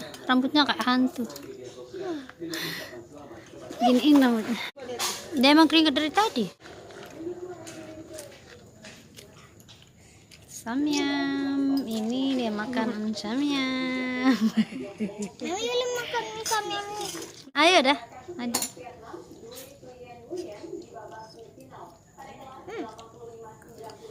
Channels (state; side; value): identical; both; correlation 1.00